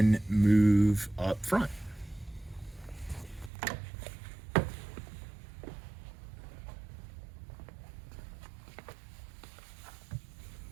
move up front.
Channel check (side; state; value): left; drops out; at 3.5 s